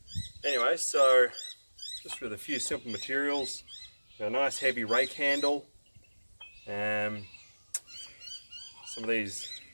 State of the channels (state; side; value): inverted; both; correlation -1.00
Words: Anyway, so just with a few simple materials, a nice heavy rake handle, some of these